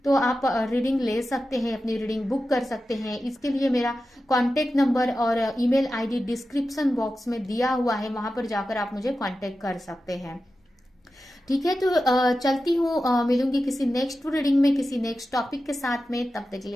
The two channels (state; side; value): normal; both; correlation 0.92